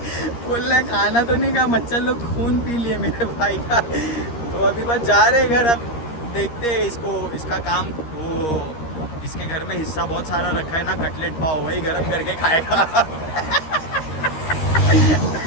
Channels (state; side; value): late; right; 13 ms